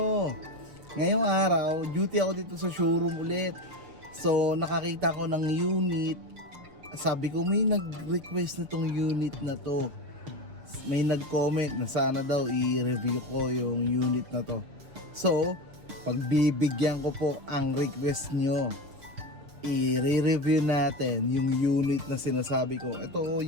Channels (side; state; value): left; late; 6.4 ms